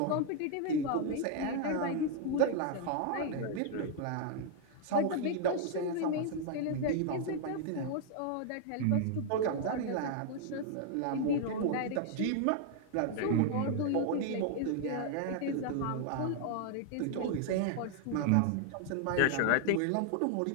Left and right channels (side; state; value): both; different; correlation 0.00